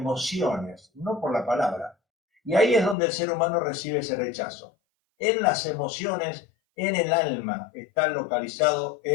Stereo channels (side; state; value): right; drops out; at 3.0 s